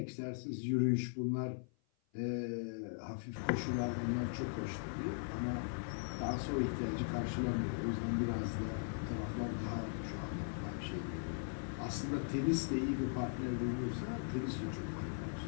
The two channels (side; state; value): right; silent; 52 dB below the other